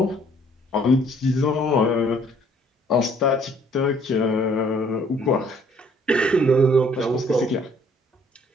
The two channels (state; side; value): normal; both; correlation 0.61